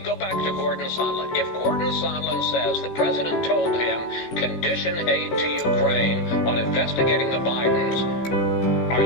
go back to Gordon Sondland. If Gordon Sondland says the president told him condition aid to Ukraine on investigating the Bidens, are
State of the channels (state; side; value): late; right; 16 ms